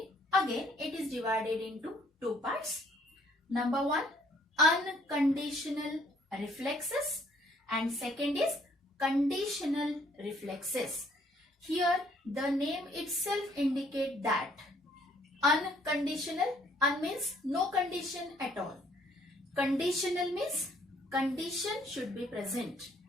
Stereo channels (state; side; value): normal; both; correlation 0.64